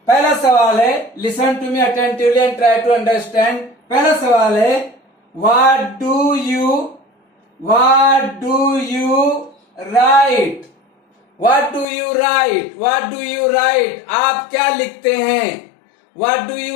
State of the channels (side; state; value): right; drops out; at 11.9 s